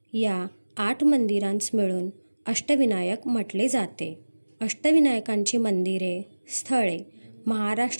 या 8 मंदिरांस मिळून अष्टविनायक म्हटले जाते. अष्टविनायकांची मंदिरे, स्थळे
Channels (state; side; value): inverted; both; correlation -1.00